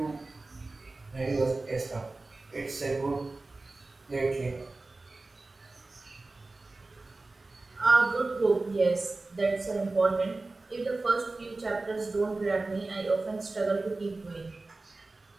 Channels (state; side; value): quieter; left; 3.3 dB